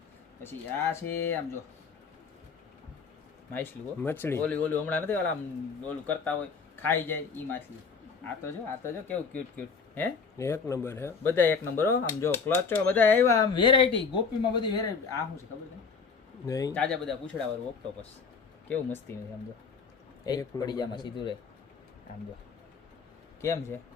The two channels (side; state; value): right; quieter; 5.3 dB